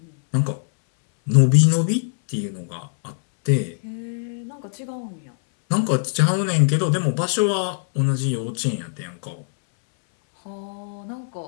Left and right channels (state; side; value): silent; right; 64 dB below the other